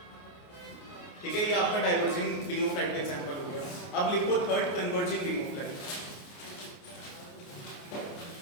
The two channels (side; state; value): right; late; 29 ms